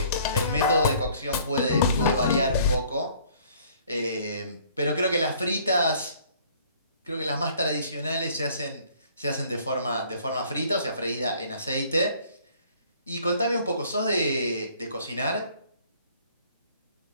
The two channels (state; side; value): inverted; both; correlation -0.57